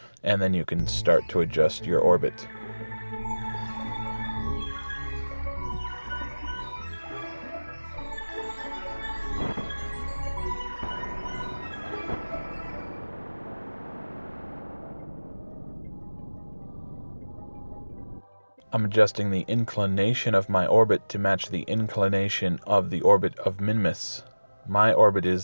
and then you can start to adjust your orbit. I'm adjusting the inclination of my orbit to match the inclination of the orbit of Minimus. My orbit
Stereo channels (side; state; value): both; inverted; correlation -1.00